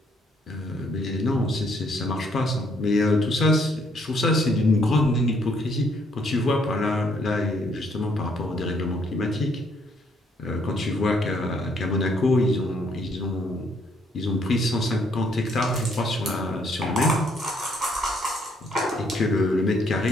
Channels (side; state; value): both; normal; correlation 0.69